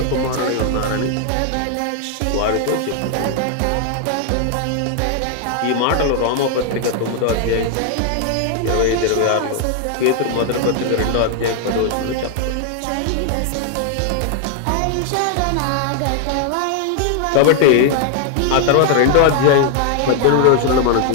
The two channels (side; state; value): both; different; correlation 0.00